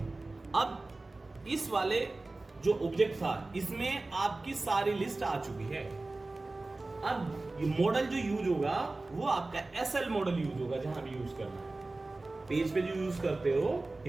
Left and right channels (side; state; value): left; quieter; 3.2 dB